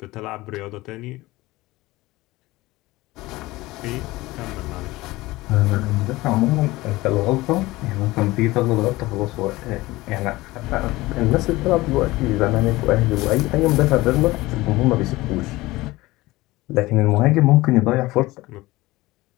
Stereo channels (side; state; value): right; quieter; 19.5 dB